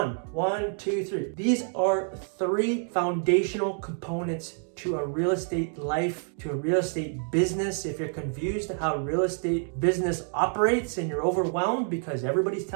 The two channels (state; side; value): silent; left; 56 dB below the other